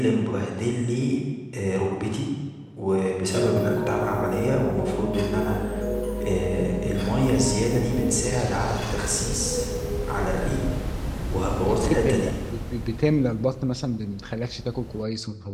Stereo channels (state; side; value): identical; both; correlation 1.00